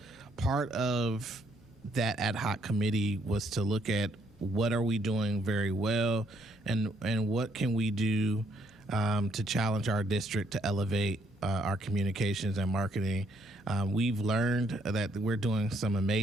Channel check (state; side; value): normal; both; correlation 0.70